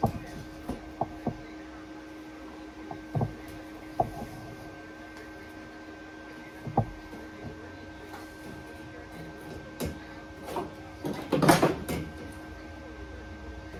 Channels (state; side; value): identical; both; correlation 1.00